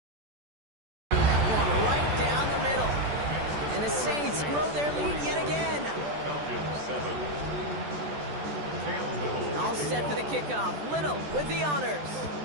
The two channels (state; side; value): late; left; 14 ms